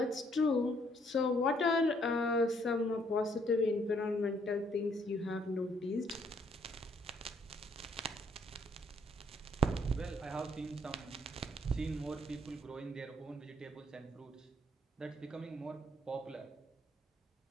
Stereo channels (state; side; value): normal; both; correlation 0.67